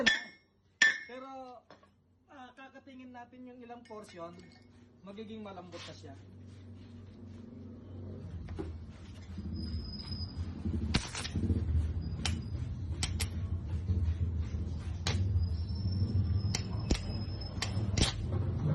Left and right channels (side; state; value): both; identical; correlation 1.00